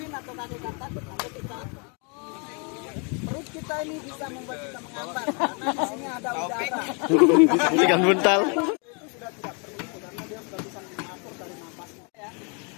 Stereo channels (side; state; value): right; quieter; 35.1 dB